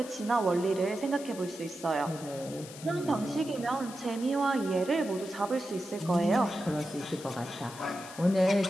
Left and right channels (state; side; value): noise; left; hiss, 15 dB below the sound